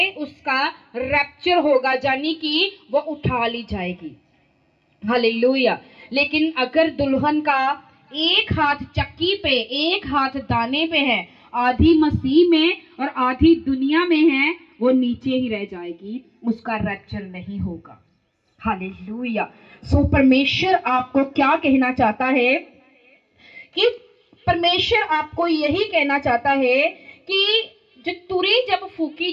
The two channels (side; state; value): both; identical; correlation 1.00